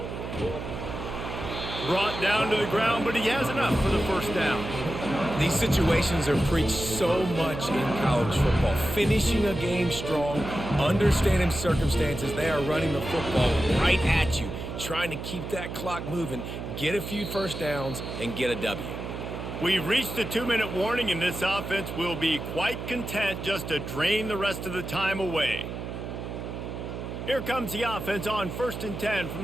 Brought down to the ground, but he has enough for the 1st down. These situations are preached so much in college football. Finishing a game strong, understanding circumstances. They are running the football right at you, trying to keep that clock moving, get a few 1st downs, and get a W. We've reached a 2-minute warning, and this offense will be quite content just to drain the rest of the time away. Here comes the offense on 1st and 10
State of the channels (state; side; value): noise; right; hum, 7 dB below the sound